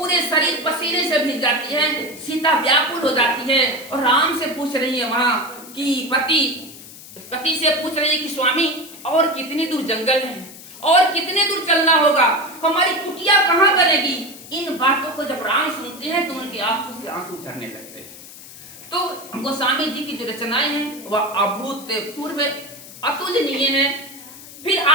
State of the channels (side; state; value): left; noise; hiss, 17 dB below the sound